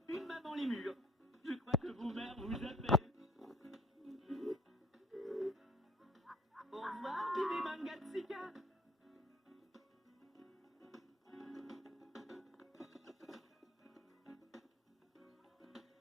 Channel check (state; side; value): normal; both; correlation 0.56